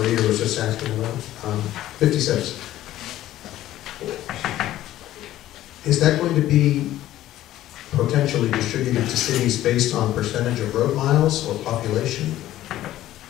Eater was just asking about, 56. Is that going to be potentially distributed to cities based on percentage of road miles or population?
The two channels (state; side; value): quieter; right; 14.0 dB